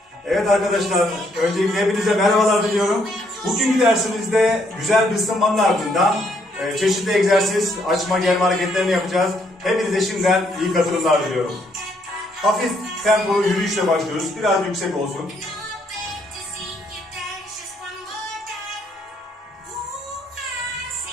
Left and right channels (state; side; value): normal; both; correlation 0.71